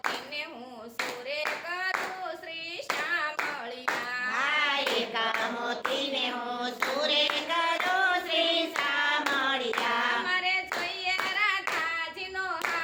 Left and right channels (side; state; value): both; identical; correlation 1.00